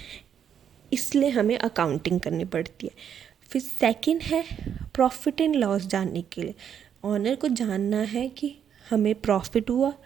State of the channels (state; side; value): quieter; left; 8.6 dB